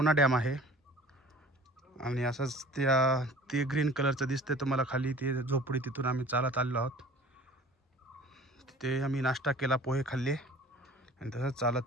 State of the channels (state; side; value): normal; both; correlation 0.46